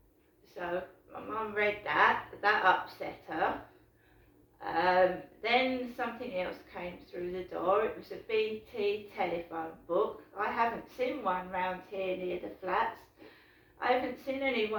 So my mum read that upset her. Then something else came through the door. It was a BT telephone book. I haven't seen one round here near the flats. I haven't seen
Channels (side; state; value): both; identical; correlation 1.00